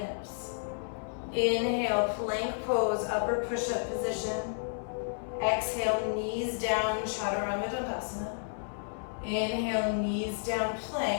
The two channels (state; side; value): silent; right; 57 dB below the other